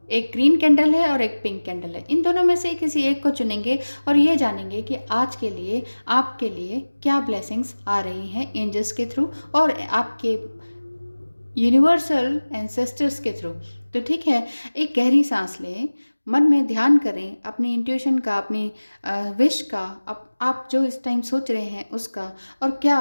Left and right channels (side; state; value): both; inverted; correlation -1.00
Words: एक ग्रीन कैंडल है और एक पिंक कैंडल है। इन दोनों में से किसी एक को चुनेंगे और ये जानेंगे कि आज के लिए आपके लिए क्या ब्लेसिंग्स आ रही हैं एंजल्स के थ्रू और आपके यूनिवर्सल एंसेस्टर्स के थ्रू। तो ठीक है, एक गहरी सांस लें, मन में ध्यान करें अपनी इंट्यूशन का, अपनी विश का, आप जो इस टाइम सोच रहे हैं उसका, और क्या